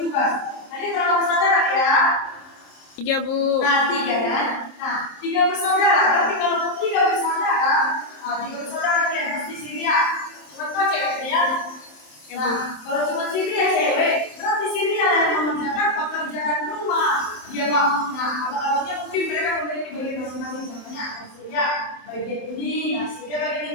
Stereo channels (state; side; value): late; right; 27 ms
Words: Nah dia berapa bersaudara ya? 3 Bu. Nah 3 kan. Nah 3 bersaudara. Tapi kalau 3 bersaudara, dia pasti Celia. Cuma kau cewek ya. Nah, kalau cuma Celia cewek, berarti Celia yang mengerjakan pekerjaan rumah. Dia mau. Nah, abang-abangnya mungkin mereka memiliki bagian masing-masing. Contohnya Celia bagian ini, Celia bagian